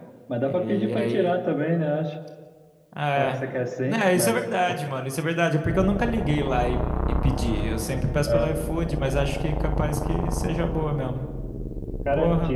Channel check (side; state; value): both; identical; correlation 1.00